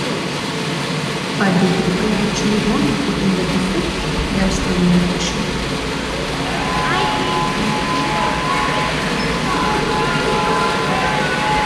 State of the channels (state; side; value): identical; both; correlation 1.00